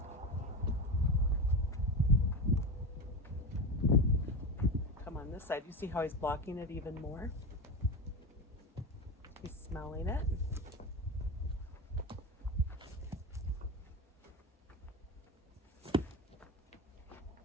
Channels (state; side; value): normal; both; correlation 0.21